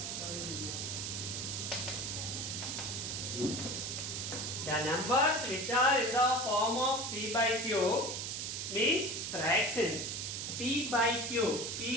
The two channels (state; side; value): noise; right; hiss, 3 dB below the sound